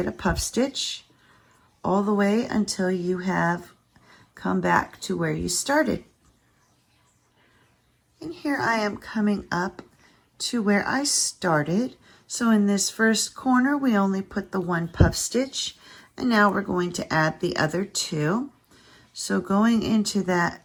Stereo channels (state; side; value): identical; both; correlation 1.00